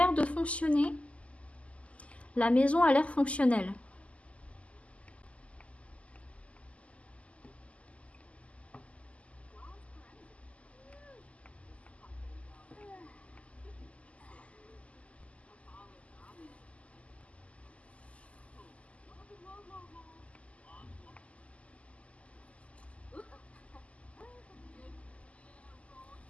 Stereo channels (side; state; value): right; late; 0.064 ms